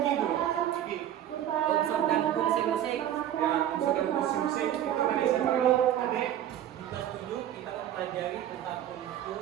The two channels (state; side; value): quieter; left; 11.4 dB